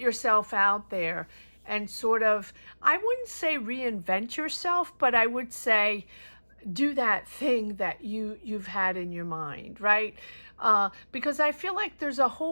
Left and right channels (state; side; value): inverted; both; correlation -1.00